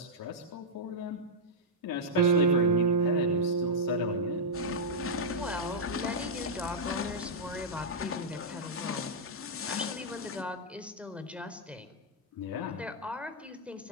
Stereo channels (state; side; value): normal; both; correlation -0.07